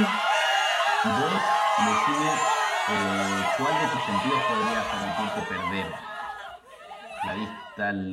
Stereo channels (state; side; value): identical; both; correlation 1.00